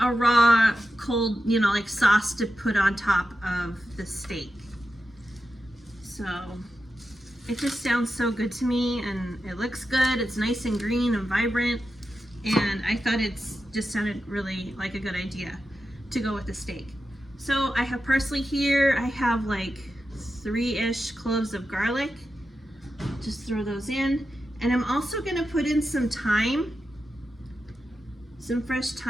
a raw, cold, you know, like sauce to put on top of the steak. So it just sounds so good to me, and it looks good. It's nice and green and vibrant, and I thought it just sounded really like a good idea to go with the steak. So I have parsley here. I have like 3-ish cloves of garlic. Just throw those in. And I'm also gonna put in some thyme, some fresh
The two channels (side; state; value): both; normal; correlation 0.90